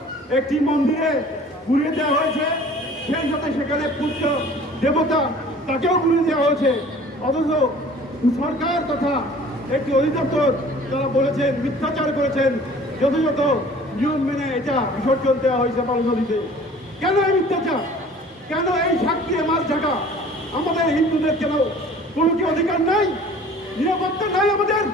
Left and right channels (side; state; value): both; normal; correlation 0.48